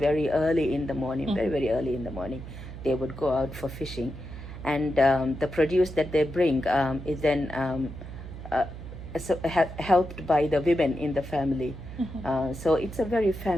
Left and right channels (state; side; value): noise; right; hum, 11 dB below the sound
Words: early in the morning, very, very early in the morning, they would go out for fishing. And the produce that they bring is then helped by the women in the family. So it's a very